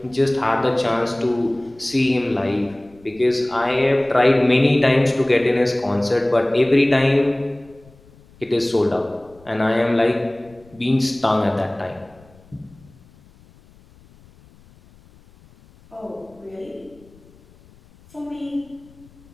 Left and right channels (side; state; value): left; noise; rumble, 27 dB below the sound